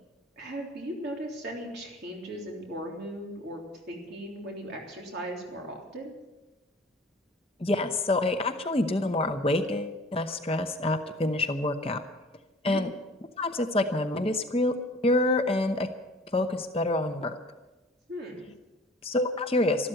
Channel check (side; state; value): both; normal; correlation 0.47